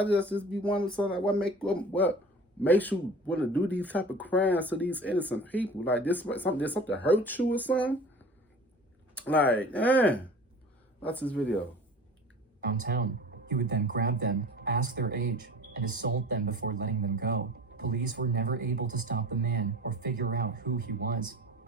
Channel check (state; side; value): normal; both; correlation 0.40